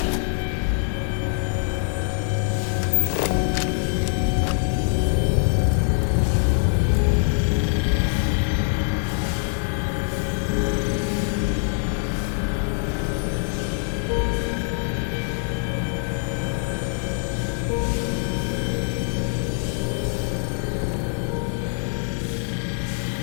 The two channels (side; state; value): right; silent; 55 dB below the other